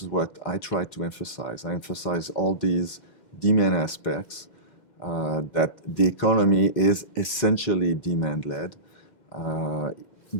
what I try to emphasize. I emphasize all these demand aspects, that the economy is essentially demand-led,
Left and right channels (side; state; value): right; late; 2.1 ms